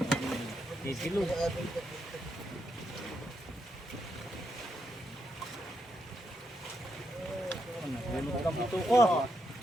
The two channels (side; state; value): both; normal; correlation 0.81